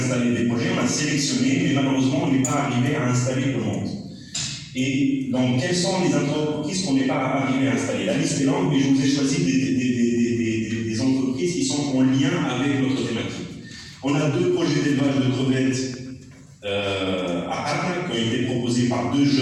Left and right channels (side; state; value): both; identical; correlation 1.00